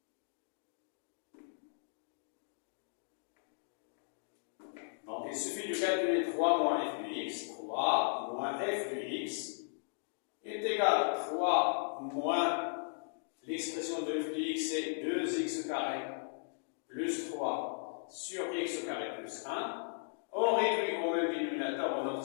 Donc, il suffit de calculer 3 moins f de x. 3 moins f de x est égal à 3 moins l'expression de f de x, c'est 2x carré plus 3 sur x carré plus 1. On réduit au même dénominateur, on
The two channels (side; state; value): right; silent; digital silence